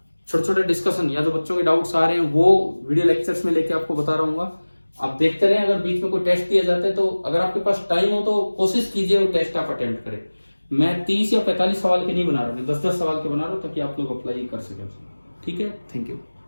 छोटे छोटे डिस्कशन या जो बच्चों के डाउट्स आ रहे हैं वो वीडियो लेक्चर्स में लेके आपको बता रहा हूँ। आप देखते रहें, अगर बीच में कोई टेस्ट दिया जाता है तो अगर आपके पास टाइम हो तो कोशिश कीजिए वो टेस्ट आप अटेम्प्ट करें। मैं 30 या 45 सवाल के नहीं बना रहा हूँ, 10-10 सवाल के बना रहा हूँ ताकि आप लोग अप्लाई कर सकें। ठीक है, थैंक यू।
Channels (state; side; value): inverted; both; correlation -1.00